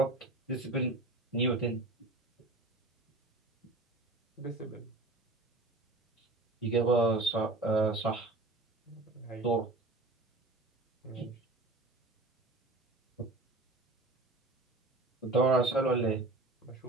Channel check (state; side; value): quieter; left; 3.0 dB